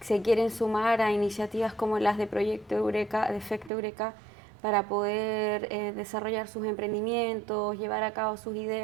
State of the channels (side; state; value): left; drops out; at 3.7 s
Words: se quieren sumar a iniciativas como las de Proyecto Eureka, de Efecto Eureka, para poder desarrollar sus emprendimientos, llevar a cabo sus